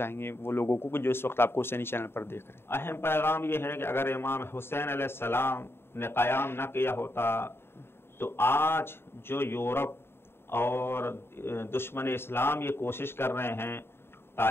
گے وہ لوگوں کو جو اس وقت آپ کو حسینی چینل پر دیکھ رہے ہیں؟ اہم پیغام یہ ہے کہ اگر امام حسین علیہ السلام نے قیام نہ کیا ہوتا تو آج جو یورپ اور دشمن اسلام یہ کوشش کر رہے ہیں،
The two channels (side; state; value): right; late; 0.11 ms